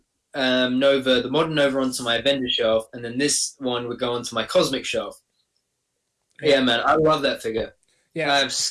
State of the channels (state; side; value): identical; both; correlation 1.00